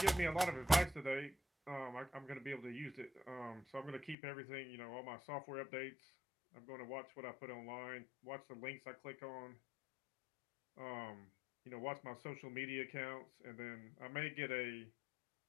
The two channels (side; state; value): right; drops out; at 4.2 s